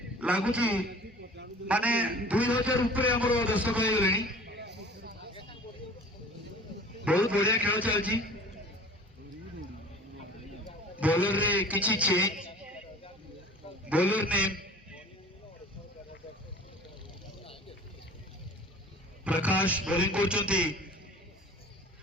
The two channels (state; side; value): normal; both; correlation 0.45